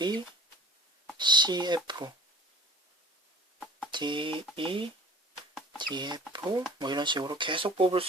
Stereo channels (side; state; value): both; normal; correlation 0.48